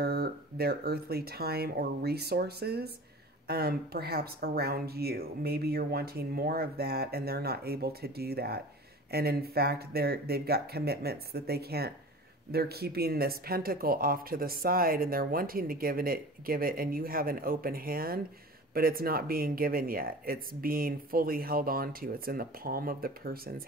earthly time or resources, perhaps around you. Maybe you're wanting more of that and they're not able to do that. And in fact, they've got commitments that they can't. They're keeping this pentacle off to the side and they're wanting to give it, and you have an open hand, but it's not being given yet. It's being fully held on to. It's in the palm of the person's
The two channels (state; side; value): normal; both; correlation 0.38